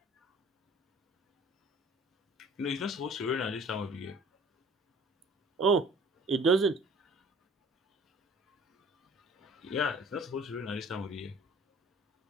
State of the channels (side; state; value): both; normal; correlation 0.50